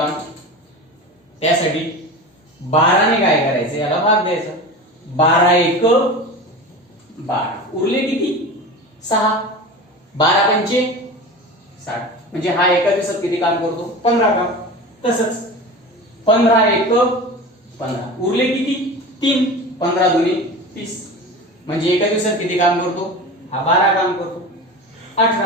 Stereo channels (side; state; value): both; normal; correlation 0.31